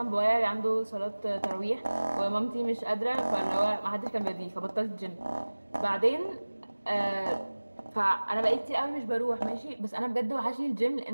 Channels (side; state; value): both; inverted; correlation -1.00